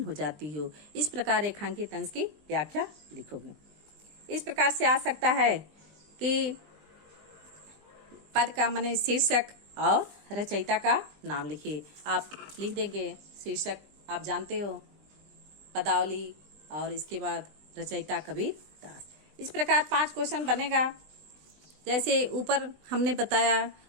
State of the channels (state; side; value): late; left; 20 ms